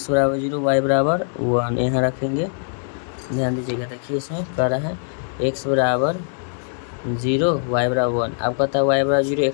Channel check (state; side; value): silent; right; digital silence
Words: बराबर 0 y बराबर 1 यहाँ रखेंगे। ध्यान दीजिएगा, देखिए इसमें कह रहा है x बराबर 0 y बराबर 1। अब कहता है y बराबर 0